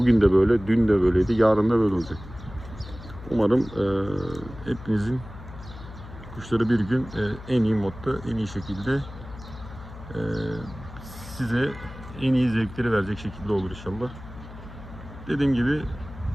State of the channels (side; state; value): left; noise; hum, 15 dB below the sound